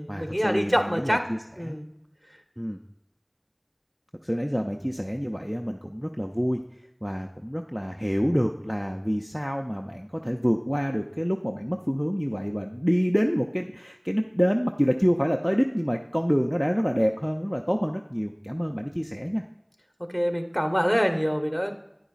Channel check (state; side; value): identical; both; correlation 1.00